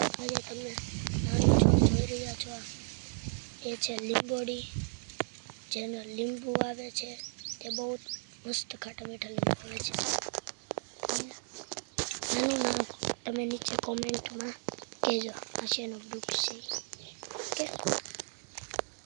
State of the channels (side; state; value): left; silent; 55 dB below the other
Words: આજે તમે નાનું છોડ જોઈ રહ્યા છો, એ છે લીંબોડી, જેનો લીંબુ આવે છે તે બહુ મસ્ત ખાટા મીઠા લીંબુ આવે છે. અને આનું નામ તમે નીચે કોમેન્ટમાં કહેજો, આ શેનો વૃક્ષ છે. ઓકે,